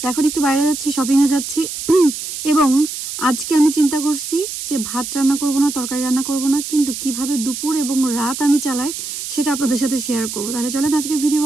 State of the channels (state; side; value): noise; right; hiss, 7 dB below the sound